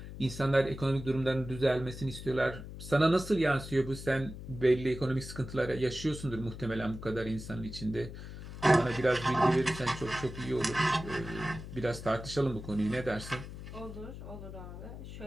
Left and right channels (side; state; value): left; noise; hum, 11 dB below the sound